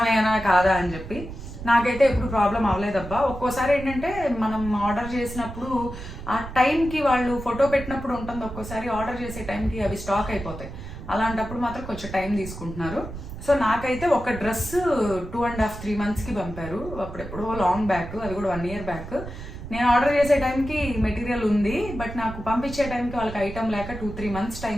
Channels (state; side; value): noise; right; rumble, 11 dB below the sound